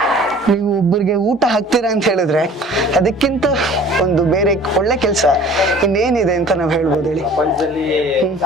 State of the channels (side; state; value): both; normal; correlation 0.47